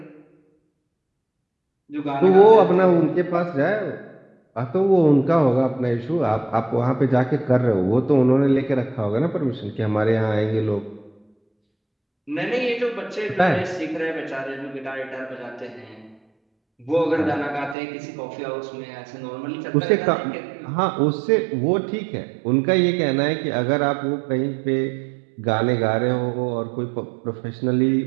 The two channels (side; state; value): left; drops out; at 17.8 s